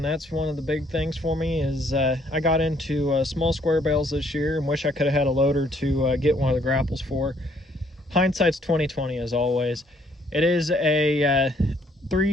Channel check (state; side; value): normal; both; correlation 0.66